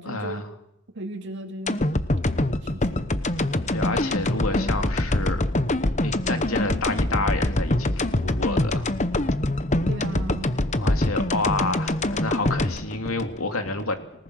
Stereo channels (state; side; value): normal; both; correlation 0.56